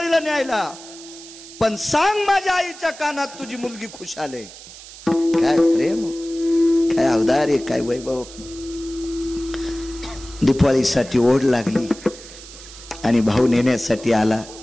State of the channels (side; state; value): right; noise; hiss, 17 dB below the sound